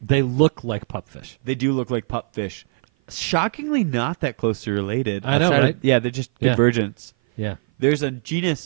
They look like pupfish. They do look like pupfish. Shockingly not that closely related. I know, outside right? of, yeah, they're just Yeah. convergence. Yeah. There's a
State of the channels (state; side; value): silent; left; 56 dB below the other